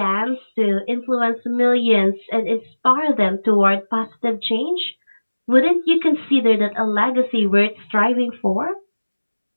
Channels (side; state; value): both; inverted; correlation -1.00